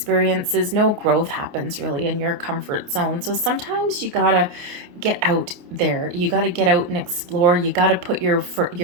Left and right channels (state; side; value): late; left; 28 ms